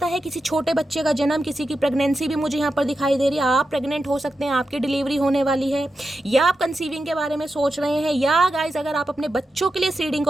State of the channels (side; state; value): both; normal; correlation 0.89